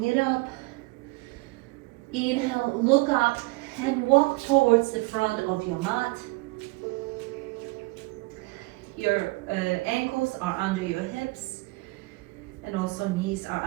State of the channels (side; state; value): left; quieter; 24.1 dB